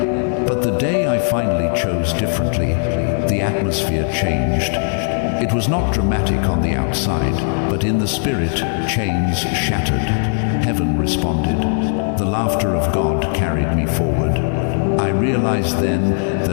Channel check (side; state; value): right; silent; digital silence